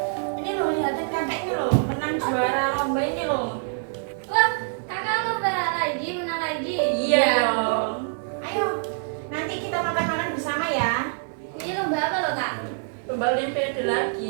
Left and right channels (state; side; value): silent; left; 62 dB below the other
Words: Ini loh, lihatin kakak ini loh, menang juara lomba ini loh. Wah, kakak lomba lagi, menang lagi. Iya dong. Ayo, nanti kita makan-makan bersama ya. Ini lomba apa loh Kak? Lomba olimpiade